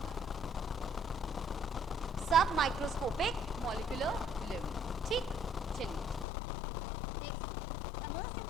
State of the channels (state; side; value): drops out; right; at 6.2 s